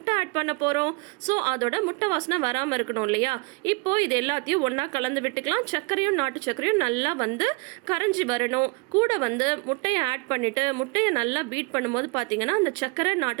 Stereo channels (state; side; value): quieter; left; 29.5 dB